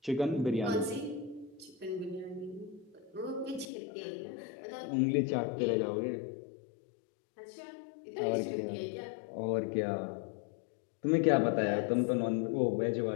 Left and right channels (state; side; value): drops out; right; at 3.7 s